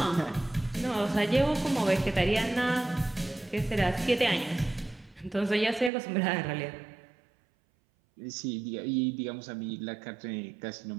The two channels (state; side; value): drops out; left; at 5.9 s